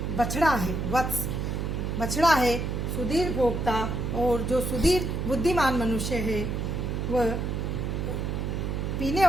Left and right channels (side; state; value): right; noise; hum, 2 dB below the sound